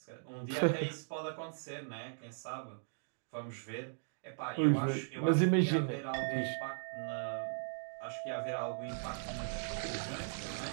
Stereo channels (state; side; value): silent; left; digital silence